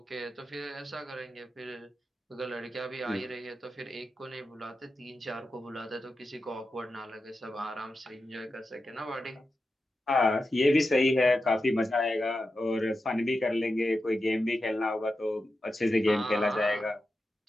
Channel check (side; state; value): both; normal; correlation 0.90